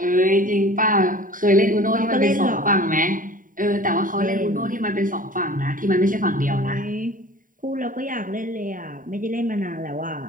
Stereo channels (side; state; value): left; late; 0.39 ms